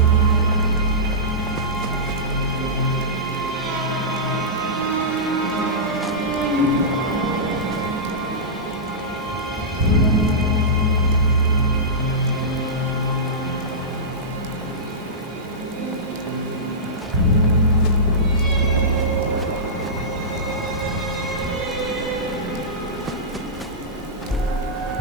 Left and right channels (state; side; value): normal; both; correlation -0.16